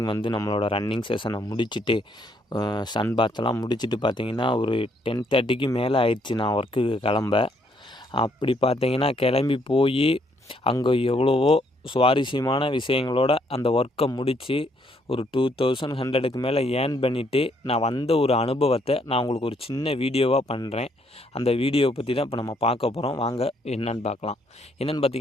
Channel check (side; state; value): both; normal; correlation 0.70